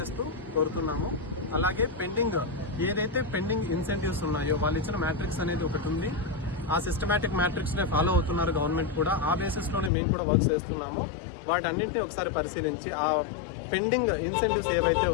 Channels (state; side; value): drops out; right; at 9.9 s